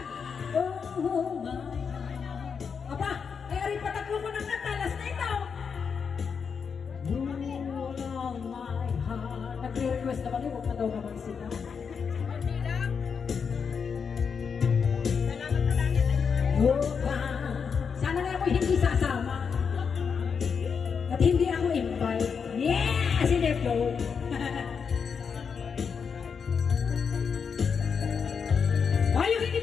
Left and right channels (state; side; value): quieter; right; 6.2 dB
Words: oh, my heart. Aba, ay ari patatlo ko ng katalas na ito. Rule on my heart. Nagre-request naman yun, huwag na daw naman sila. Oh, Sana nga ako hindi sasama. At hindi ako invite. Yeah! Si Deflo. Ay, yung hindi